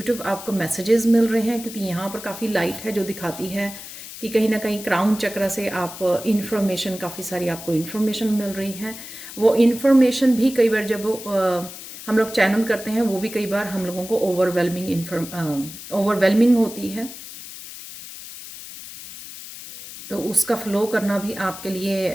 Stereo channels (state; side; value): noise; left; hiss, 13 dB below the sound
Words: आपको मैसेजेस मिल रहे हैं, क्योंकि यहाँ पर काफ़ी लाइट है जो दिखाती है कि कहीं ना कहीं क्राउन चक्र से आप इन्फॉर्मेशन, काफ़ी सारी आपको इन्फॉर्मेशन मिल रही है। वो इन्फॉर्मेशन भी कई बार जब हम लोग चैनल करते हैं, वो भी कई बार हम लोगों को ओवरवेलमिंग होती है। तो उसका फ्लो करना भी आपके